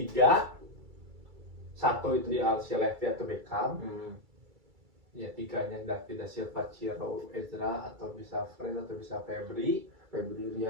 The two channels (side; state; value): left; late; 2.3 ms